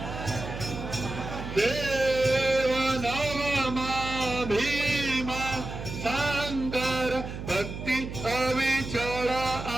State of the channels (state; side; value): noise; right; hum, 8 dB below the sound